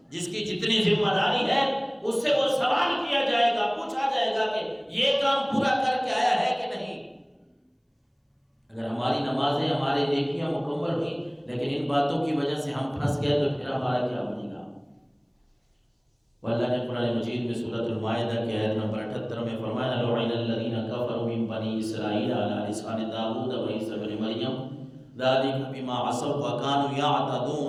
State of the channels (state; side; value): identical; both; correlation 1.00